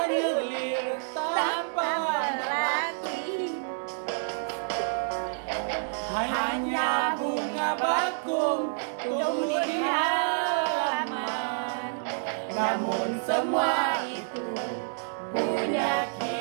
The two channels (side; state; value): left; silent; digital silence